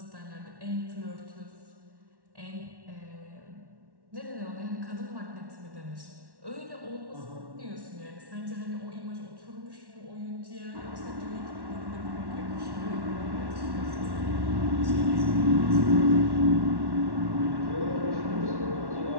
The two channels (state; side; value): late; left; 1.1 ms